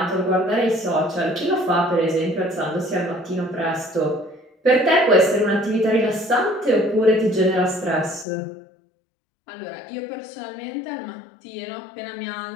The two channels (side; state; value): right; drops out; at 8.2 s